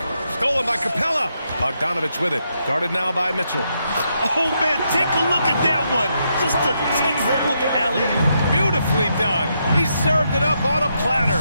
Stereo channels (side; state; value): both; inverted; correlation -0.80